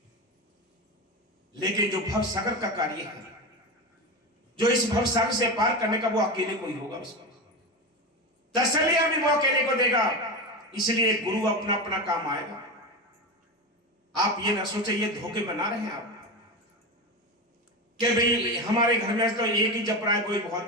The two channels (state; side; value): normal; both; correlation 0.20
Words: लेकिन जो भव सागर का कार्य है, जो इस भव सागर से पार करने का, वो अकेले कोई होगा। उसको तसल्लियां भी वो अकेले को देगा। इसलिए गुरु अपना अपना काम आएगा। आप ये ना सोचे ये धोखे बना रहे हैं आप कि भाई हमारे घर में तो एक ही जप रहा है, कोई